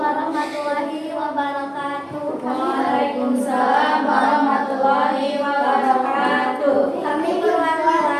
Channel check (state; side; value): identical; both; correlation 1.00